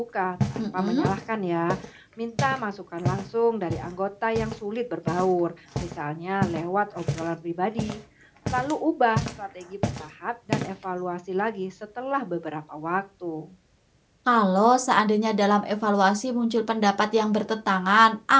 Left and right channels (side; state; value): both; identical; correlation 1.00